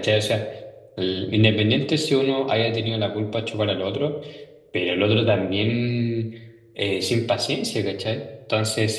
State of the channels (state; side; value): identical; both; correlation 1.00